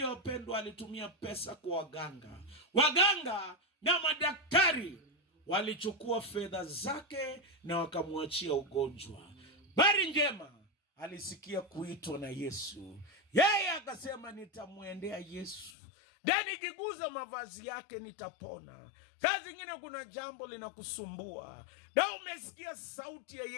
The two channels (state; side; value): drops out; right; at 15.7 s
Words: wapendwa, alitumia pesa kwa waganga. Waganga na madaktari walichukua fedha zake na wakamwachia ugonjwa. Habari njema, alisikia kuitwa na Yesu. Yeye akasema nitamwendea Yesu, na nikiguza mavazi yake nitapona. Saa zingine kuna jambo linakusumbua na umesikia sauti ya